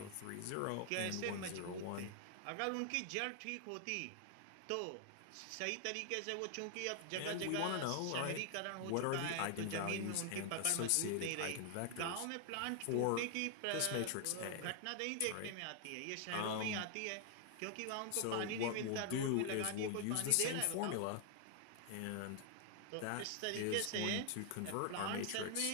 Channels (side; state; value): both; different; correlation 0.00